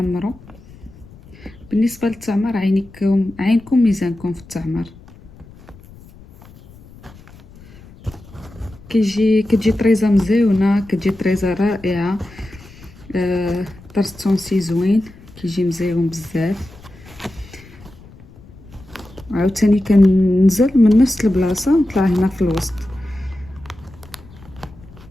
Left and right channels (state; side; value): noise; left; rumble, 22 dB below the sound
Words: بالنسبه للتعمر عينكم ميزانكم في التعمر. كتجي طريزه مزيونه، كتجي طريزه رائعه. طرز تونسي زوين كيجي مزيون بزاف. عاوتاني كننزل من نفس البلاصه نطلع هنا في الوسط.